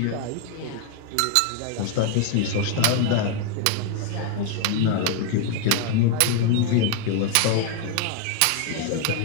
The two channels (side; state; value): both; different; correlation 0.00